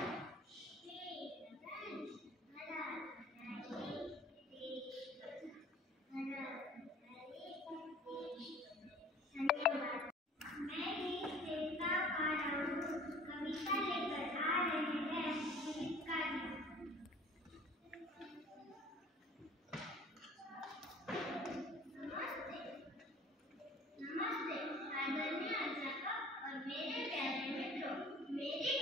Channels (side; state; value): both; normal; correlation 0.48